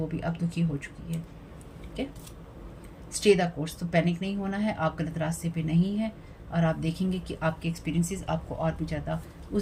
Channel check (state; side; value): identical; both; correlation 1.00